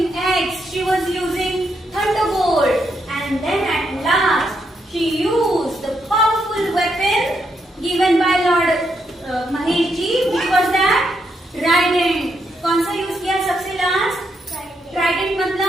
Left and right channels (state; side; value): normal; both; correlation 0.79